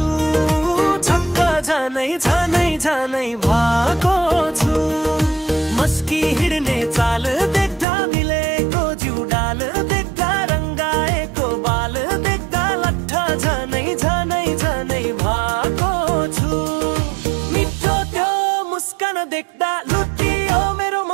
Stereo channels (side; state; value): left; drops out; at 7.9 s